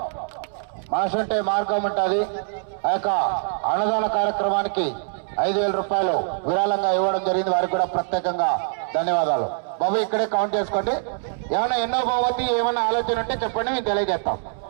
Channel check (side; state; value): left; silent; 63 dB below the other